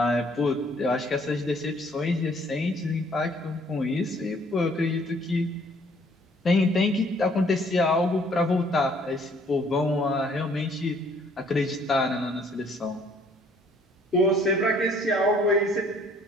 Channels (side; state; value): both; normal; correlation 0.61